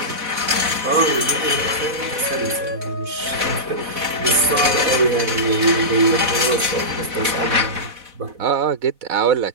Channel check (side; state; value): left; late; 4.1 ms